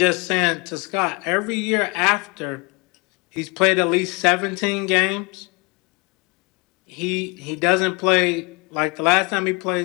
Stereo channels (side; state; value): right; quieter; 28.6 dB